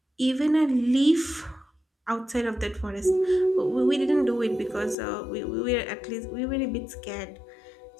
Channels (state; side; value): drops out; right; at 5.0 s